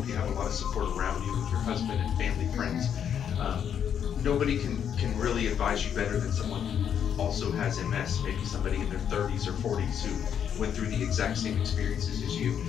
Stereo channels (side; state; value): right; quieter; 8.5 dB